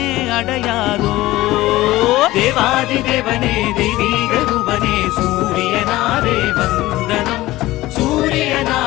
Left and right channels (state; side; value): quieter; right; 17.5 dB